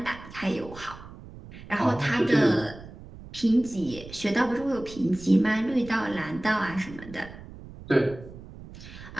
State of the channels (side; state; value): right; noise; rumble, 16 dB below the sound